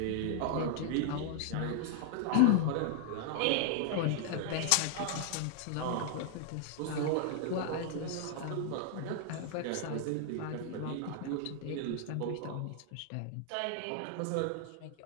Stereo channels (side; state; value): both; different; correlation 0.00